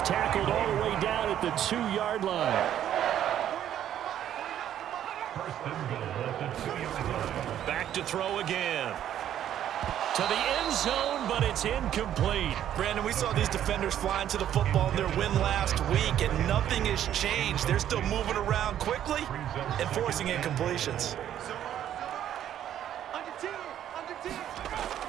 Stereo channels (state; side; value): quieter; left; 10.9 dB